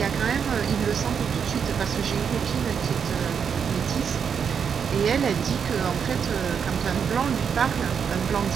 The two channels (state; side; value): quieter; left; 7.0 dB